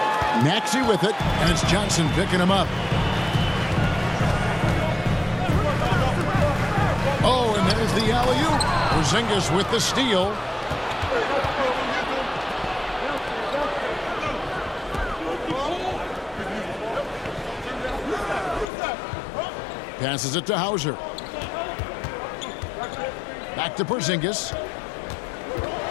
Maxey with it, and it's Johnson picking him up. Oh, and there's the alley-oop. Porzingis with the steal. Passes it to Hauser. Back to Porzingis.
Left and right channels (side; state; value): right; drops out; at 18.7 s